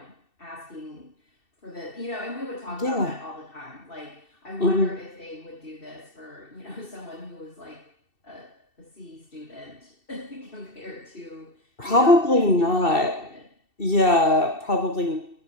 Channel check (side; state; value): right; late; 2.7 ms